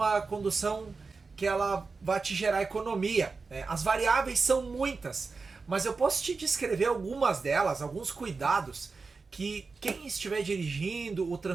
condução que ela vai te gerar economia. As variáveis são muitas, mas eu posso te descrever algumas delas, alguns cuidados que quem estiver dirigindo, o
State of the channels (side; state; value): left; quieter; 4.4 dB